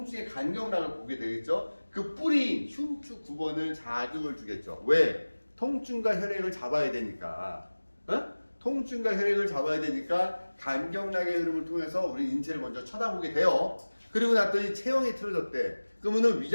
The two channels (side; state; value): both; inverted; correlation -1.00